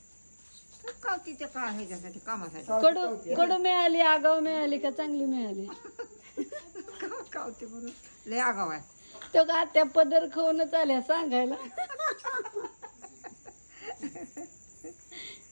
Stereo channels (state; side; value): inverted; both; correlation -1.00